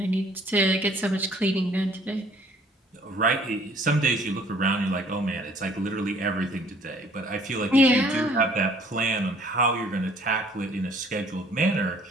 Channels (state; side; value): normal; both; correlation 0.57